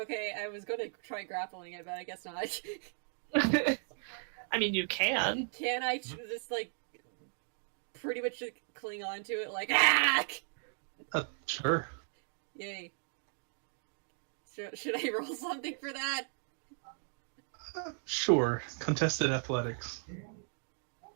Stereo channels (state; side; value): silent; left; 54 dB below the other